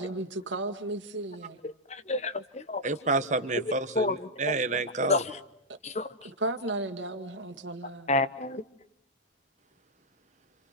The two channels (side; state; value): both; normal; correlation -0.06